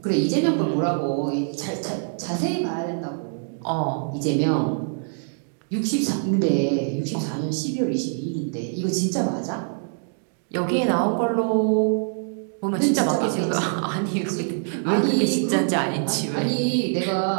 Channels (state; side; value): silent; left; 62 dB below the other